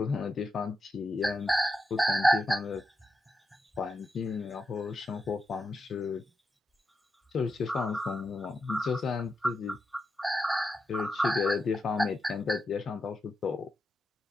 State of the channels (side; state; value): both; normal; correlation 0.86